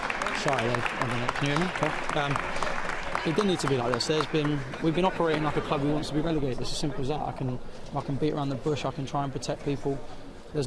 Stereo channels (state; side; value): identical; both; correlation 1.00